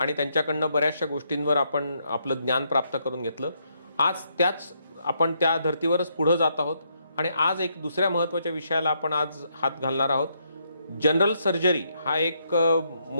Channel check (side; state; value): both; inverted; correlation -0.76